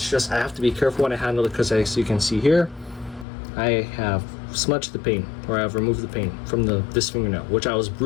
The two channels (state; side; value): drops out; right; at 3.2 s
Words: just I have to be careful when I handle it, because as you can see here, I have smudged the paint, or I've removed the paint from this fingernail, which I was